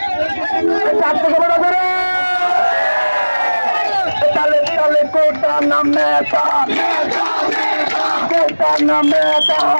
তালে তালে কোটা নাম নেতা, কোটা নাম নেতা,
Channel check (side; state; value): both; inverted; correlation -1.00